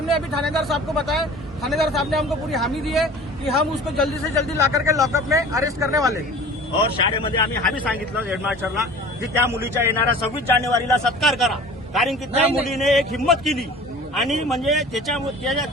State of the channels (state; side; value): normal; both; correlation 0.42